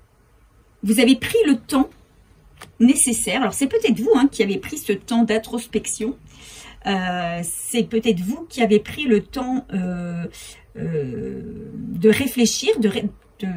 avez pris le temps nécessaire. Alors, c'est peut-être vous, hein, qui avez pris ce temps d'introspection. C'est peut-être vous qui avez pris le temps de réfléchir, de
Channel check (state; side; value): identical; both; correlation 1.00